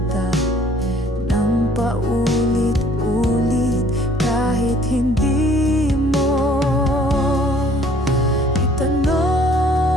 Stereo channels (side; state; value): both; normal; correlation 0.57